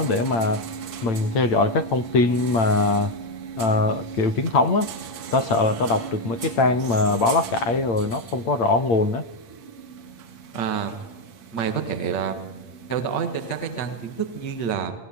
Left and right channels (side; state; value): right; late; 8.7 ms